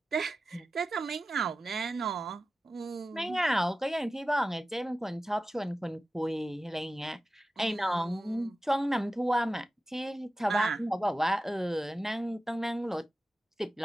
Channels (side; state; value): both; normal; correlation 0.93